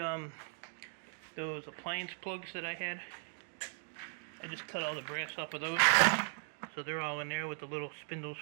those appliance plugs that I had. I just cut all the brass off of those. So they're all in there with the little spindles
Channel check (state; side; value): silent; left; 53 dB below the other